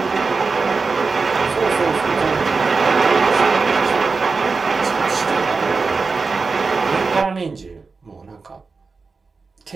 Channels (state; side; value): quieter; left; 4.4 dB